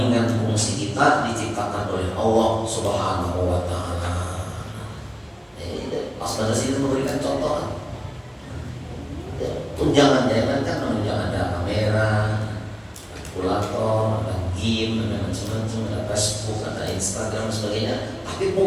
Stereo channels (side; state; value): both; identical; correlation 1.00